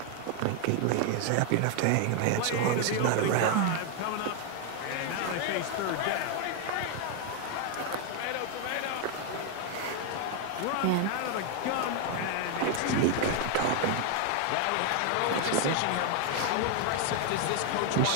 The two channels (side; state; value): both; different; correlation 0.00